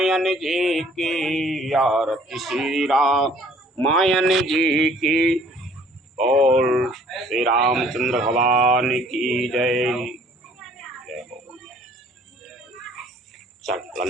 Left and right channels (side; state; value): both; normal; correlation 0.57